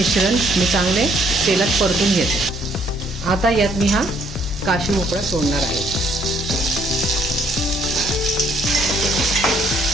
मी चांगले तेलात परतून घेते. आता यात मी हा काशी भोपळा सोडणार आहे.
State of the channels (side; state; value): both; normal; correlation 0.66